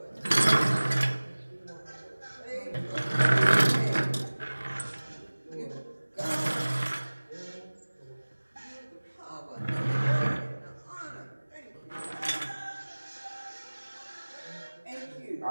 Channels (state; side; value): inverted; both; correlation -1.00